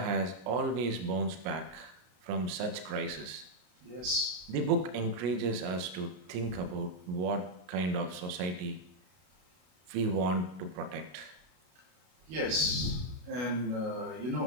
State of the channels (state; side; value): late; left; 32 ms